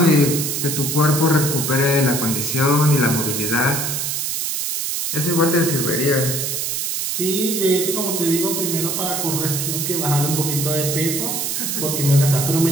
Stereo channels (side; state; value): right; noise; hiss, 1 dB below the sound